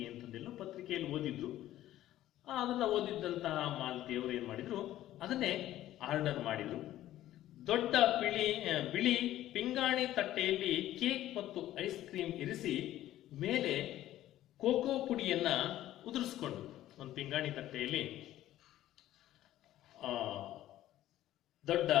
ಅಂತಂದೆಲ್ಲೋ ಪತ್ರಿಕೆಯಲ್ಲಿ ಓದಿದ್ರು. ಅದನ್ನ ಓದಿದ್ದಂತಹ ಮಾಲತಿಯವರು ಏನ್ ಮಾಡಿದ್ರು, ಅದನ್ನೇ ಆರ್ಡರ್ ಮಾಡಿದ್ರು. ದೊಡ್ಡ ಬಿಳಿ ಪಿಂಗಾಣಿ ತಟ್ಟೆಯಲ್ಲಿ ಕೇಕ್ ಮತ್ತು ಐಸ್ ಕ್ರೀಮ್ ಇರಿಸಿ ಮೇಲೆ ಕೋಕೋ ಪುಡಿಯನ್ನ ಉದುರಿಸ್ಕೊಂಡು, ಒಂದು ಪಿಂಗಾಣಿ ದೊಡ್ಡ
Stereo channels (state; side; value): quieter; right; 13.8 dB